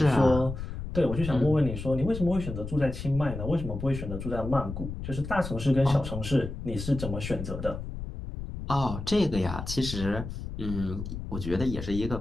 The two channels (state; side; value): noise; left; rumble, 7 dB below the sound